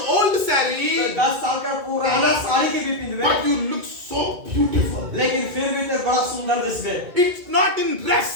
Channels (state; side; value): late; left; 2.1 ms